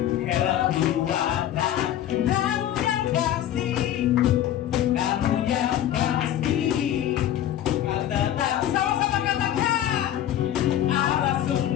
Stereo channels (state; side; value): quieter; right; 11.7 dB